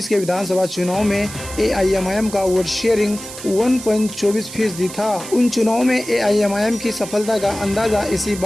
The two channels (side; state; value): right; noise; hiss, 12 dB below the sound